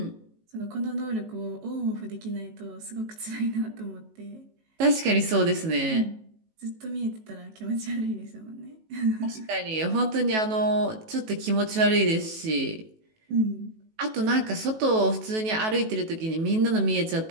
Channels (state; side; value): late; left; 18 ms